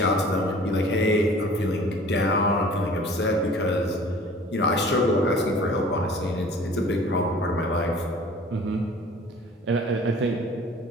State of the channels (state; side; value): normal; both; correlation 0.48